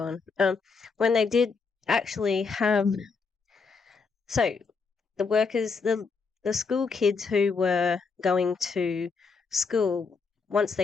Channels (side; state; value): right; quieter; 4.9 dB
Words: When they did actually have, so the workers, the school kids who were going to school, once